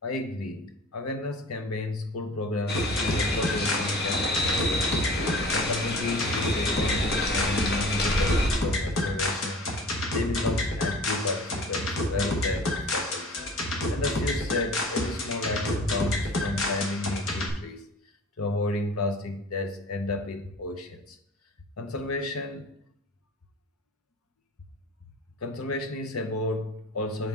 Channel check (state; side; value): normal; both; correlation 0.42